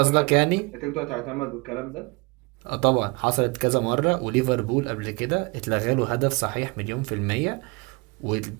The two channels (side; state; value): left; quieter; 28.1 dB